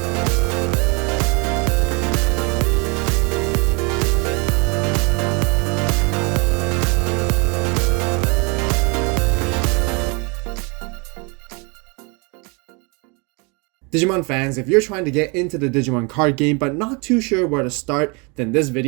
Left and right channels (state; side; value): quieter; left; 30.9 dB